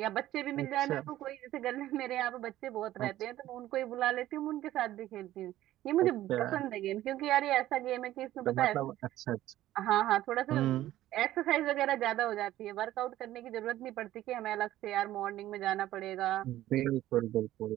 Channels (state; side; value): quieter; left; 14.3 dB